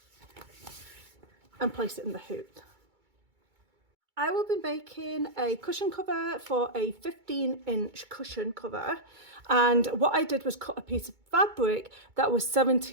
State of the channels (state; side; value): late; left; 2.2 ms